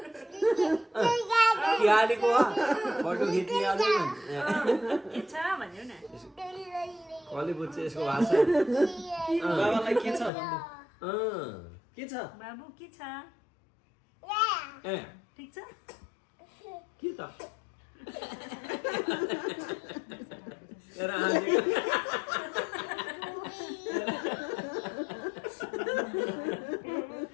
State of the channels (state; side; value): drops out; right; at 10.3 s